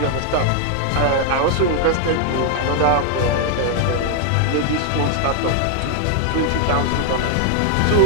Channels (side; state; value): both; different; correlation 0.00